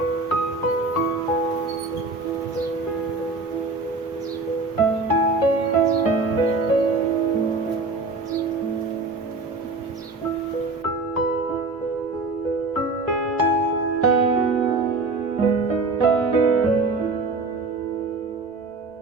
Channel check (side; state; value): left; quieter; 3.5 dB